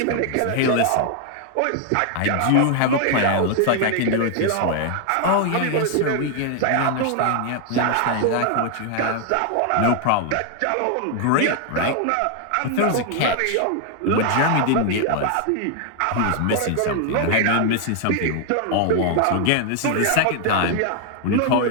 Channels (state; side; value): different; both; correlation 0.00